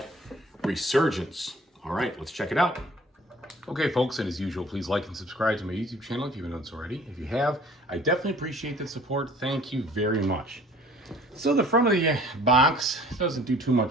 Resurgence. All right, let's check it out. Okay folks, and as usual, please like and subscribe to my YouTube channel if you haven't done so already. If you have, I definitely appreciate the support. Thank you very much. So the front of the box doesn't do too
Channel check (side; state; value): both; normal; correlation 0.51